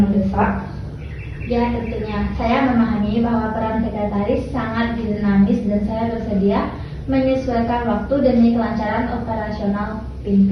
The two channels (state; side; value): identical; both; correlation 1.00